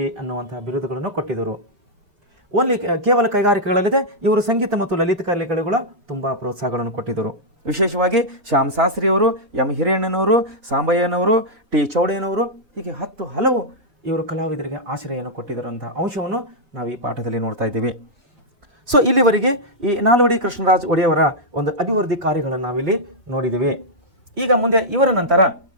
ಅನ್ನುವಂತಹ ಬಿರುದುಗಳನ್ನು ಕೊಟ್ಟಿದ್ದರು. ಓನ್ಲಿ ಕೇವಲ ಕೈಗಾರಿಕೆಗಳಲ್ಲದೆ ಇವರು ಸಂಗೀತ ಮತ್ತು ಲಲಿತ ಕಲೆಗಳಿಗೂ ತುಂಬ ಪ್ರೋತ್ಸಾಹಗಳನ್ನು ಕೊಟ್ಟಿದ್ದರು. ವಿಶೇಷವಾಗಿ ಶ್ಯಾಮ್ ಶಾಸ್ತ್ರಿಯವರು, ಎಂ ಹಿರಿಯಣ್ಣನವರು, ಸಾಂಬಯ್ಯನವರು, ಟಿ ಚೌಡಯ್ಯನವರು, ಹೀಗೆ ಹಲವು ಇವರು ಕಲಾವಿದರಿಗೆ ಆಶ್ರಯವನ್ನು ಕೊಟ್ಟಿದ್ದರಂಥ ಅಂಶವನ್ನು ನಾವು ಈ ಪಾಠದಲ್ಲಿ ನೋಡ್ತಾ ಇದ್ದೀವಿ. ಸೊ ಇಲ್ಲಿವರೆಗೆ ಈ ನಾಲ್ವಡಿ ಕೃಷ್ಣರಾಜ ಒಡೆಯವರ ಒಂದು ಅಭಿವೃದ್ಧಿ ಕಾರ್ಯಗಳನ್ನು ನಾವಿಲ್ಲಿ ನೋಡಿದ್ದೀವಿ. ಈಗ ಮುಂದೆ ಇವರ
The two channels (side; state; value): left; late; 4.3 ms